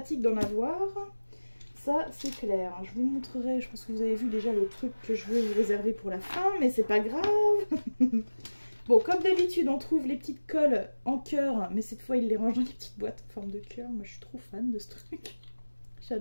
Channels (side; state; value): both; inverted; correlation -1.00